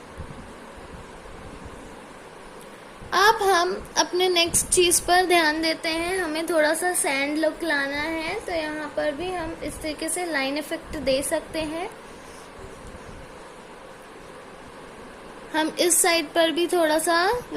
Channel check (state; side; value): identical; both; correlation 1.00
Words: अब हम अपने नेक्स्ट चीज पर ध्यान देते हैं। हमें थोड़ा सा सैंड लुक लाना है, तो यहाँ पर भी हम इस तरीके से लाइन इफेक्ट दे सकते हैं। हम इस साइड पर भी थोड़ा सा